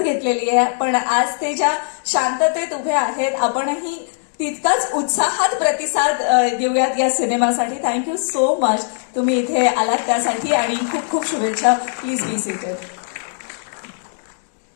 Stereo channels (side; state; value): right; silent; digital silence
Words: घेतलेली आहे, पण आज ते ज्या शांततेत उभे आहेत, आपणही तितकाच उत्साहात प्रतिसाद देऊयात या सिनेमासाठी. थँक्यू सो मच तुम्ही इथे आलात त्यासाठी आणि खूप खूप शुभेच्छा. Please be seated.